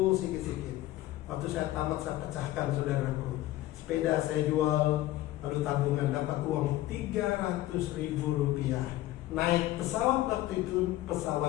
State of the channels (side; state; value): right; quieter; 15.7 dB